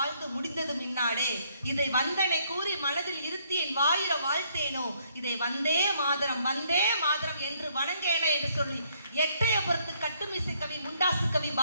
முடிந்தது மின்னாடே, இதை வந்தனை கூறி மனதில் இருத்தி என் வாயிர வாழ்த்தேனோ, இதை வந்தே மாதரம் என்று வணங்கேனே என்று சொல்லி எட்டயபுரத்து கட்டுமிசை கவி முண்டாசு கவி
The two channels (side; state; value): both; inverted; correlation -0.68